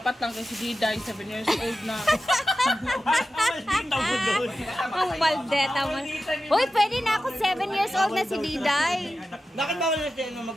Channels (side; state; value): both; normal; correlation 0.93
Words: lang kasi Diday, 7 years old na. Ang maldeta mo. Uy, pwede na ako. 7 years old na si Diday. Bakit bawal na siya